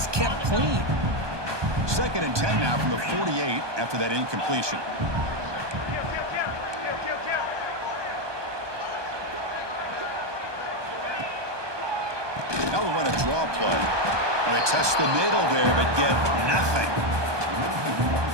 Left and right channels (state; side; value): late; left; 1.2 ms